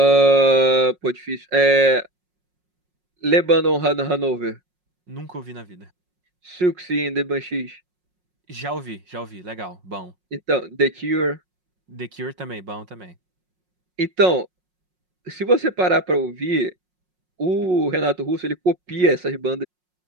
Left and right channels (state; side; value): late; left; 5.5 ms